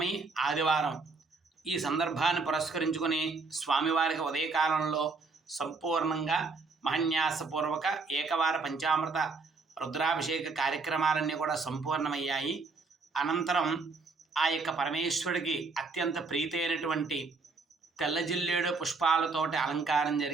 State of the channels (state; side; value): quieter; left; 4.1 dB